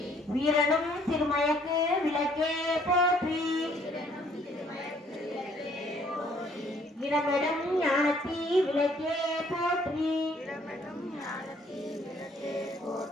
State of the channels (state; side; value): normal; both; correlation 0.62